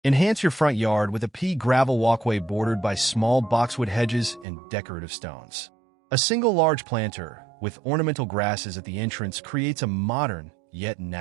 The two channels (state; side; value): drops out; left; at 4.5 s